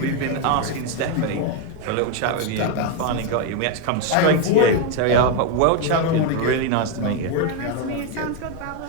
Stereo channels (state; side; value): different; both; correlation 0.02